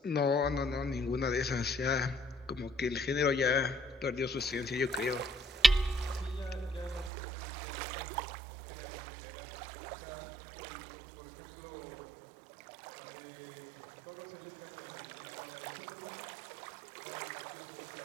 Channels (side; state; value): left; drops out; at 7.1 s